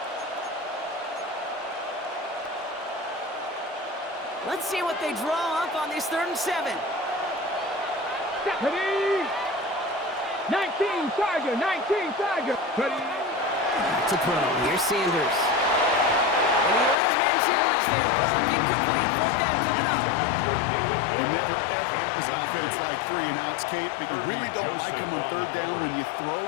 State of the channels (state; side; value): drops out; right; at 16.9 s